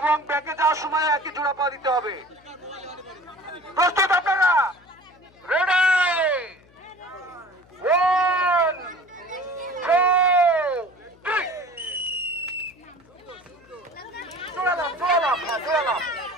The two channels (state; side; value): noise; left; hum, 28 dB below the sound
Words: ব্যাকে যাওয়ার সময় একই জোড়া পা দিতে হবে। প্রস্তুত আপনারা? রেডি? 1 2 3। জোড়া লাফ, জোড়া লাফ, জোড়া লাফ,